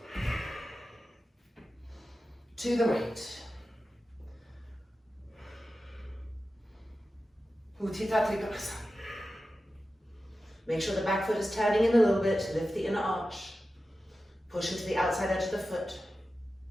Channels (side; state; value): both; normal; correlation 0.93